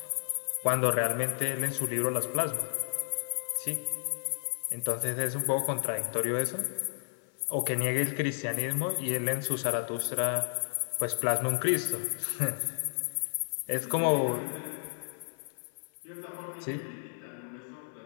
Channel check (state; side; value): silent; right; 56 dB below the other